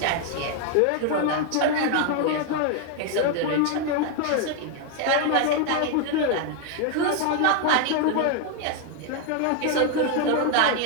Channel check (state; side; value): different; both; correlation 0.01